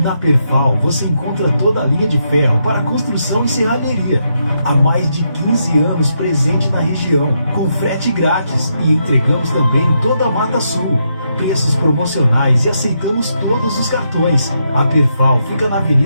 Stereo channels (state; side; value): inverted; both; correlation -0.80